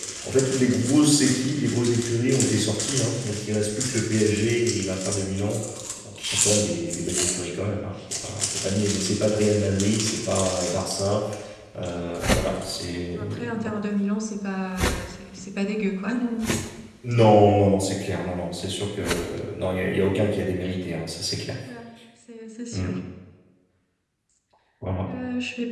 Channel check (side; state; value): both; identical; correlation 1.00